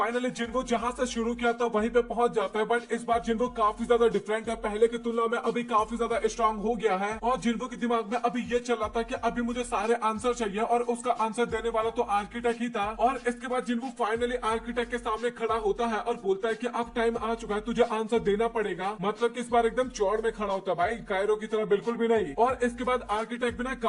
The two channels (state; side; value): identical; both; correlation 1.00